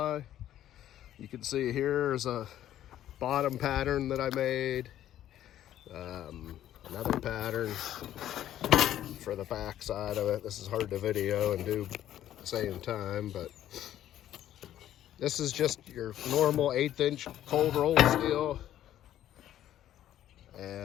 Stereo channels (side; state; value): right; quieter; 12.0 dB